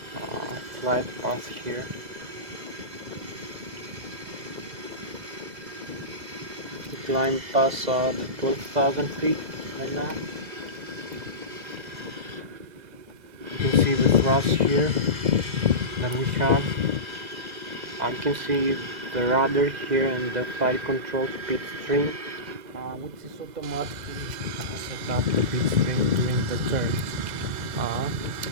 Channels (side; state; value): left; late; 2.0 ms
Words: flight path here. We climb past the 12,000 feet right now. You can see the thrust here that we have. I can see the rudder here and the flight control speed stream, which is automatically set up the speed stream during the turns